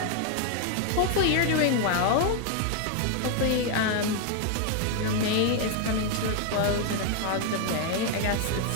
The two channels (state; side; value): different; both; correlation 0.00